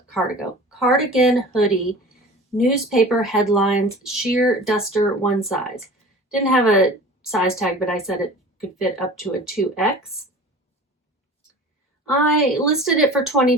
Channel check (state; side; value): normal; both; correlation 0.40